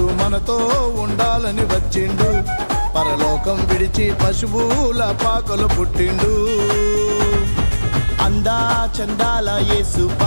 మనతో ఉండాలని వచ్చిండు పరలోకం విడిచి పశువుల పాకలు పుట్టిండు అందా చందాల యేసు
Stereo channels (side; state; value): both; inverted; correlation -1.00